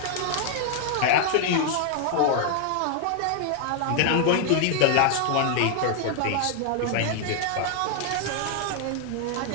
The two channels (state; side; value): different; both; correlation 0.00